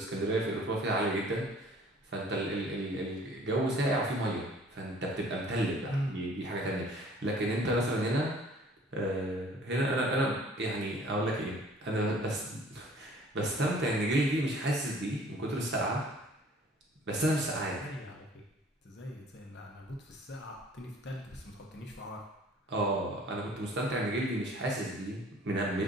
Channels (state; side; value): normal; both; correlation 0.53